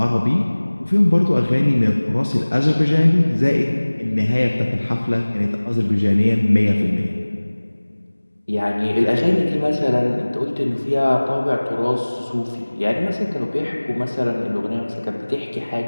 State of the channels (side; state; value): both; inverted; correlation -1.00